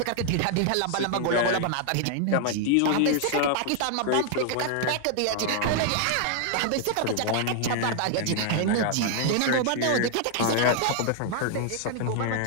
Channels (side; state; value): both; different; correlation 0.00